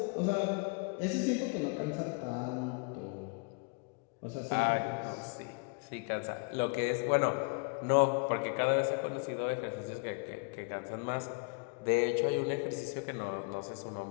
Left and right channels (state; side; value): quieter; right; 33.5 dB